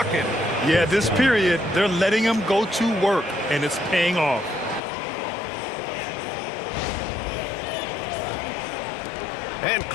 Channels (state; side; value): drops out; right; at 4.8 s